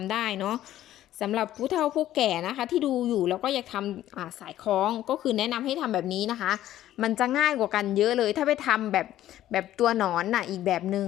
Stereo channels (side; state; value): right; quieter; 13.1 dB